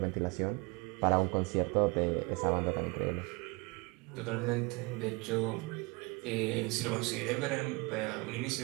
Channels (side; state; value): left; quieter; 26.6 dB